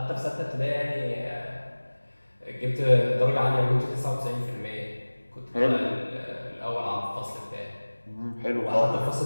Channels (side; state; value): both; inverted; correlation -1.00